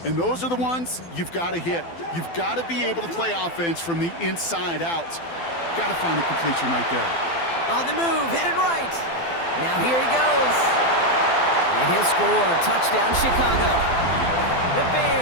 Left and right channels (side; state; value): right; late; 12 ms